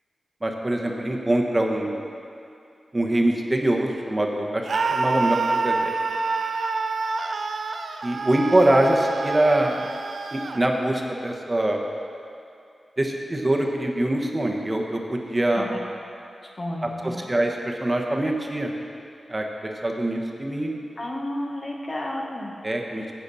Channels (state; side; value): normal; both; correlation 0.96